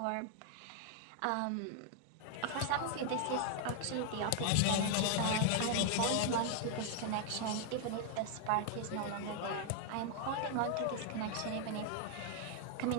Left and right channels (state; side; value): different; both; correlation 0.00